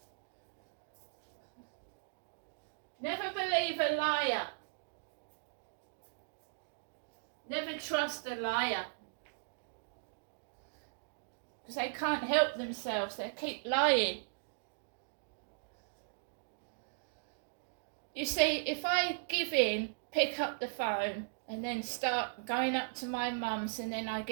Never believe a liar. Never trust a liar. Because they can't help themselves. They keep lying. You see, if I give in, pick up the phone, and then start going up to my mum's, and then I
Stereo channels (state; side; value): silent; left; digital silence